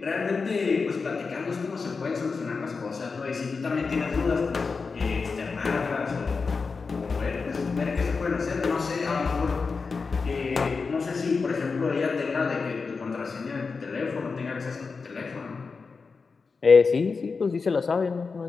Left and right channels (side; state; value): right; quieter; 4.7 dB